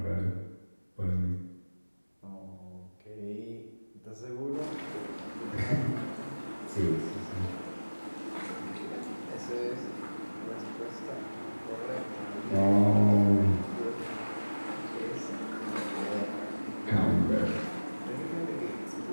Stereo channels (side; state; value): both; inverted; correlation -1.00